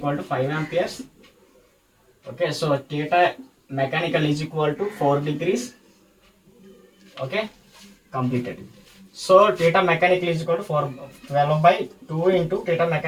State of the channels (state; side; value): identical; both; correlation 1.00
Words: to 5 amperes. Okay, so theta mechanical is equal to 4 degrees. Okay, completed. So theta mechanical is equal to 12/2 into theta